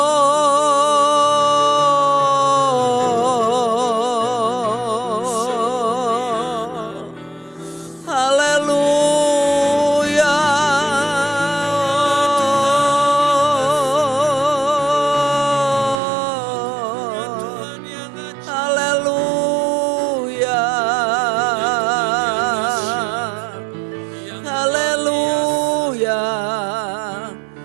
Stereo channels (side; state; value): left; drops out; at 16.0 s